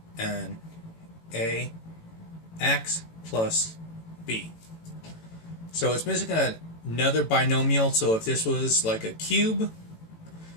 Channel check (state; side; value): late; right; 18 ms